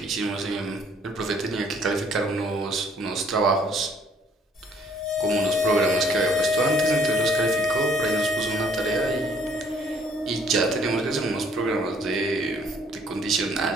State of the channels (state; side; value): normal; both; correlation 0.62